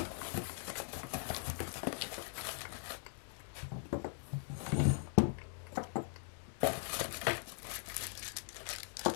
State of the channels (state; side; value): silent; right; 51 dB below the other